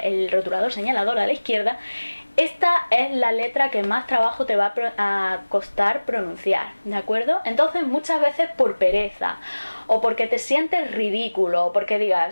el rotulador señalador a la izquierda. Esta es la letra que más trabajo te va a costar pronunciar, ¿de acuerdo? Entonces muchas veces por pereza, o porque te sientes ridículo, o porque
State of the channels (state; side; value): inverted; both; correlation -1.00